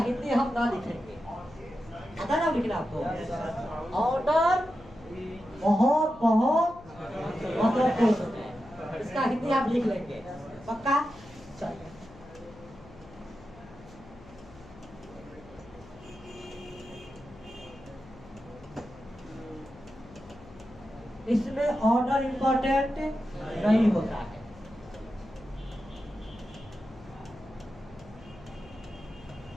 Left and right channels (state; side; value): noise; left; hum, 20 dB below the sound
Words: हम ना लिखेंगे, पता ना लिखना आपको। ऑर्डर बहुत बहुत महत्वपूर्ण है, इसका हिंदी आप लिख लेंगे पक्का। चलिए इसमें ऑर्डर इंपॉर्टेंट नहीं होता है।